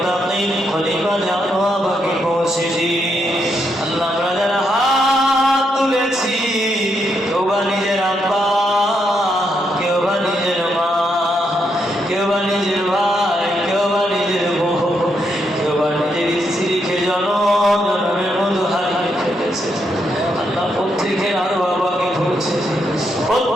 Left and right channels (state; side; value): normal; both; correlation 0.79